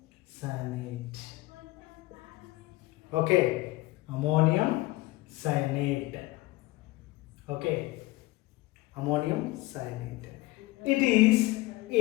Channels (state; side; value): quieter; right; 20.0 dB